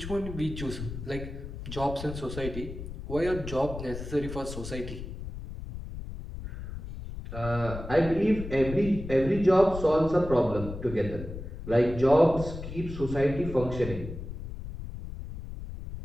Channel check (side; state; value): left; noise; rumble, 9 dB below the sound